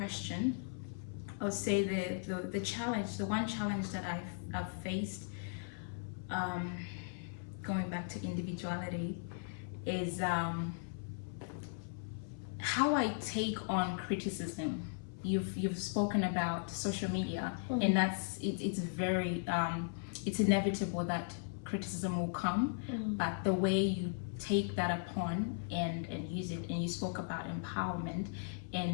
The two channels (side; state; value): right; silent; 53 dB below the other